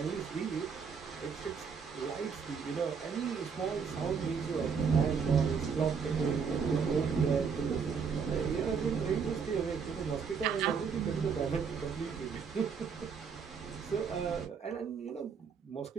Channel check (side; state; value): left; quieter; 6.1 dB